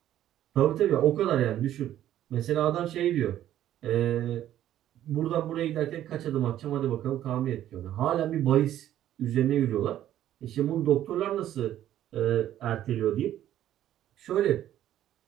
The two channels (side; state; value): left; quieter; 12.1 dB